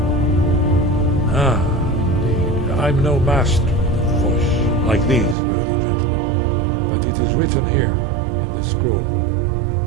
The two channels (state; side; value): drops out; left; at 5.4 s